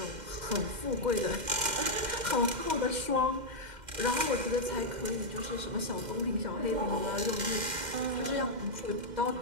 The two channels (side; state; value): left; late; 2.1 ms